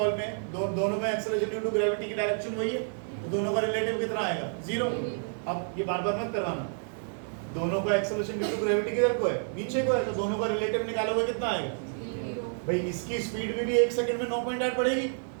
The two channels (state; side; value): silent; left; 58 dB below the other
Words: में, दोनों में एक्सेलरेशन ड्यू टू ग्रेविटी की डायरेक्शन वही है, तो दोनों का रिलेटिव कितना आएगा 0। अब ये बार बार मत करवाना, दोनों का एक्सेलरेशन ड्यू टू ग्रेविटी किधर को है, नीचे को है, तो दोनों का रिलेटिव निकालोगे कितना आएगा भाई, इसकी स्पीड में भी 1 सेकंड में 9.8 बढ़ेगी